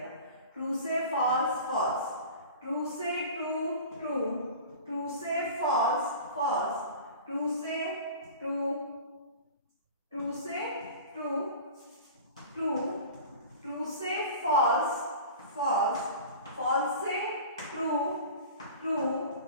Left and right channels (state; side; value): inverted; both; correlation -0.38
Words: ट्रू से फॉल्स फॉल्स, ट्रू से ट्रू ट्रू, ट्रू से फॉल्स फॉल्स, ट्रू से ट्रू, ट्रू से ट्रू ट्रू, ट्रू से फॉल्स फॉल्स, फॉल्स से ट्रू ट्रू,